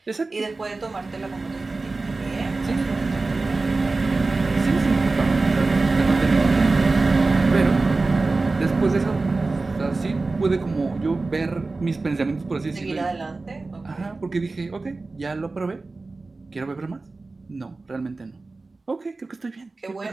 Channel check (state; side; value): quieter; left; 3.6 dB